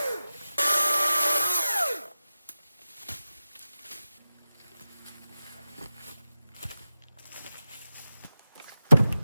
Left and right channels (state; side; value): inverted; both; correlation -0.92